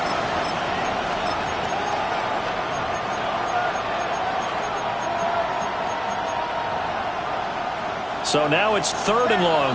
So now it's 3rd and long,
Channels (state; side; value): identical; both; correlation 1.00